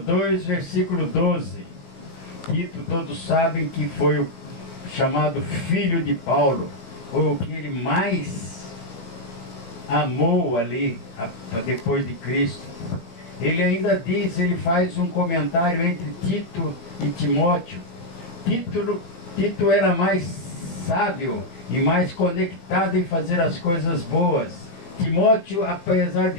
versículo 12. Tito, todos sabem que foi o chamado filho de Paulo, foi o que ele mais amou ali, depois de Cristo. Ele ainda diz, ele faz um comentário entre Tito e Timóteo. Tito era mais sábio e mais conectado em fazer as coisas boas. Timóteo, apesar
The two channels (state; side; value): late; right; 18 ms